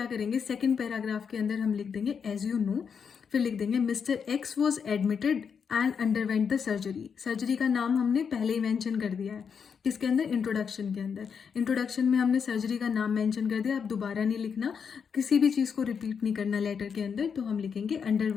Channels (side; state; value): right; quieter; 6.6 dB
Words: करेंगे, सेकंड पैराग्राफ के अंदर हम लिख देंगे एज यू नो। फिर लिख देंगे mister x was admitted and underwent the surgery. Surgery का नाम हमने पहले ही मेंशन कर दिया है, किसके अंदर, इंट्रोडक्शन के अंदर। इंट्रोडक्शन में हमने सर्जरी का नाम मेंशन कर दिया, अब दोबारा नहीं लिखना, किसी भी चीज़ को रिपीट नहीं करना लेटर के अंदर। तो हम लिखेंगे